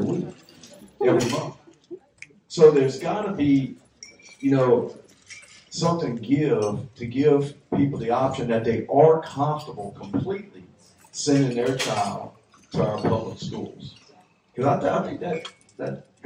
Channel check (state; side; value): identical; both; correlation 1.00